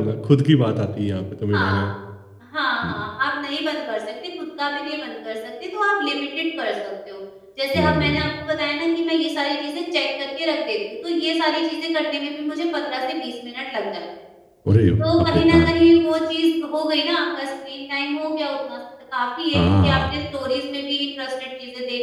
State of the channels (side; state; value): both; identical; correlation 1.00